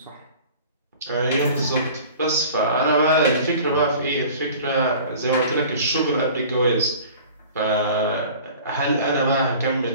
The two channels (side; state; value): both; inverted; correlation -0.44